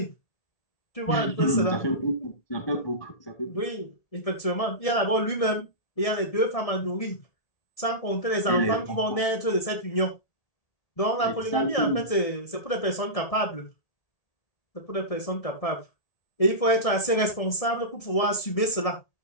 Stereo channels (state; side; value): late; right; 1.6 ms